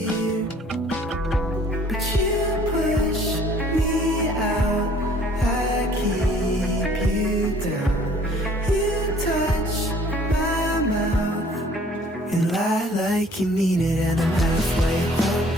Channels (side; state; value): both; normal; correlation 0.56